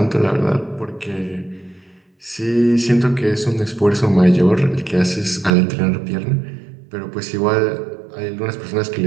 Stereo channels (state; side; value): drops out; left; at 5.5 s